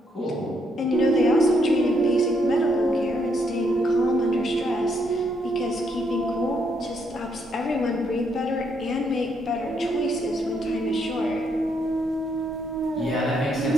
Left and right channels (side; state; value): both; normal; correlation 0.74